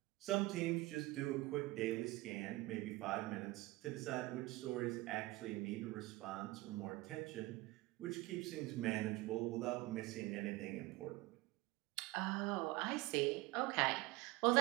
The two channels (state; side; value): quieter; left; 20.4 dB